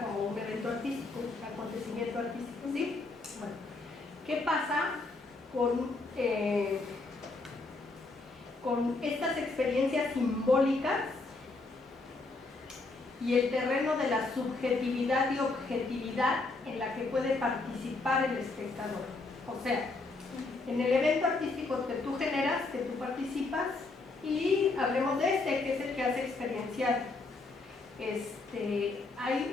como un evento artístico, un acontecimiento artístico, ¿sí? Bueno, ¿qué pasa con estas experiencias simbólicas y el terreno de la subjetividad y objetividad en la que puede participar el espectador? O sea, en el evento artístico que tú generas, que tú participas, y hablemos de que es el que hace experiencial.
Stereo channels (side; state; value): right; quieter; 3.5 dB